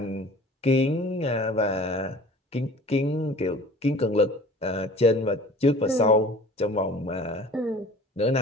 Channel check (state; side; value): normal; both; correlation 0.45